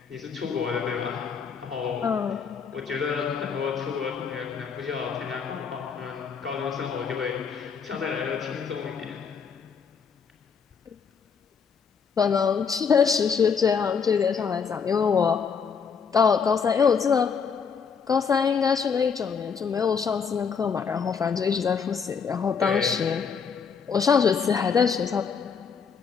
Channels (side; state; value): right; quieter; 6.2 dB